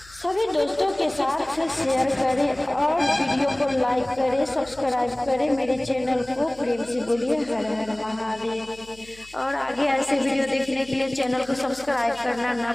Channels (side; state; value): left; noise; hum, 24 dB below the sound